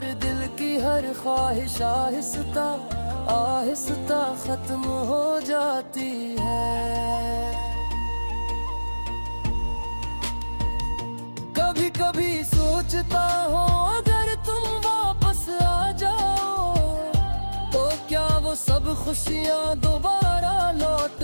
दिल की हर ख्वाहिश आहिस्ता आहिस्ता खत्म हो जाती है। कभी कभी सोचता हूँ अगर तुम वापस आ जाओ तो क्या वो सब खुशियाँ दोबारा लौट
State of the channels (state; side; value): inverted; both; correlation -1.00